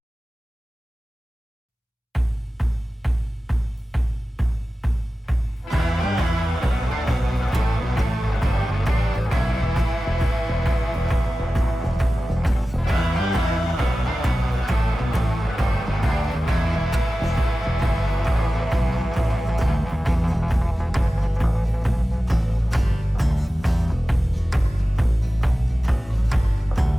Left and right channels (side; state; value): both; normal; correlation 0.95